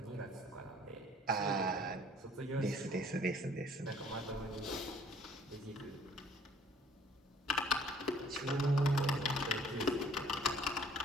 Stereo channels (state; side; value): normal; both; correlation 0.57